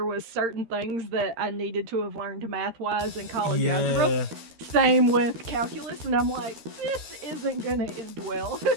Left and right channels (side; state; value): left; late; 13 ms